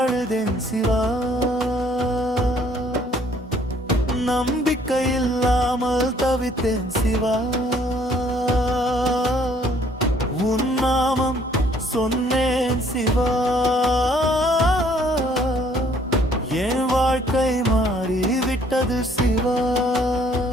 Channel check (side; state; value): both; normal; correlation 0.61